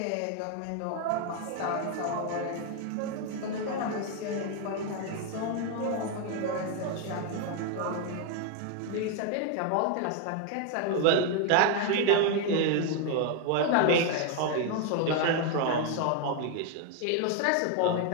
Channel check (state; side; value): different; both; correlation 0.01